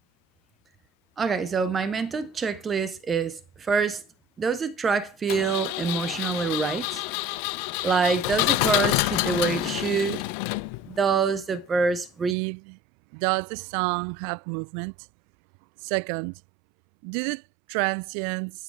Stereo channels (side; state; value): left; drops out; at 12.4 s